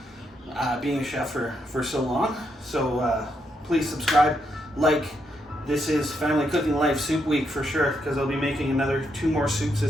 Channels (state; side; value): normal; both; correlation 0.79